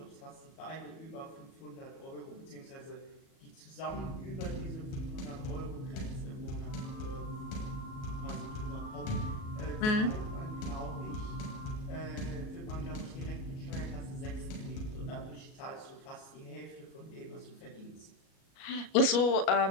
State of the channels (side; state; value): right; late; 37 ms